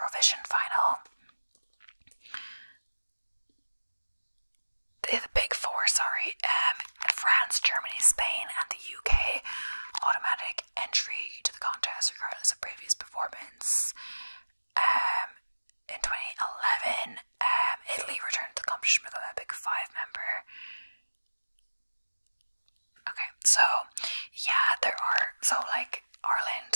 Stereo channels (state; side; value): inverted; both; correlation -1.00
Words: final. The big 4, sorry, France, Germany, Spain, and the UK, automatic entry to the contest regardless of previous performance. In 2011, Italy returned to the competition with a big 5 member. Okay, so yeah, there are, so like